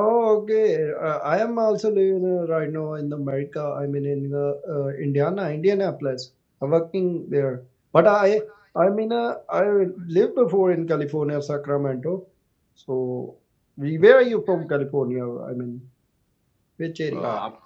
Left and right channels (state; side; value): identical; both; correlation 1.00